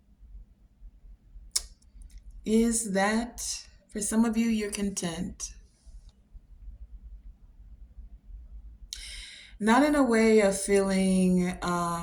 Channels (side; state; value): both; identical; correlation 1.00